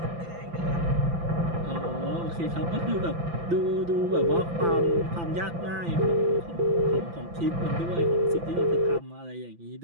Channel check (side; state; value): left; late; 5.9 ms